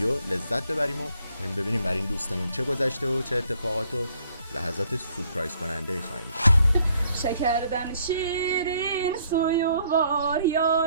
لذت ببریم و ببینیم برای این دوستمون چه گذشته و چه اتفاقات و لحظات سورپرایز کننده خواهیم داشت. شکردن شیرین سویوار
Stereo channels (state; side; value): inverted; both; correlation -0.66